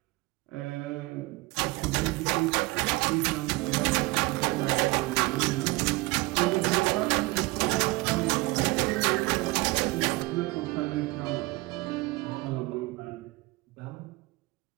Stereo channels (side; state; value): left; quieter; 22.6 dB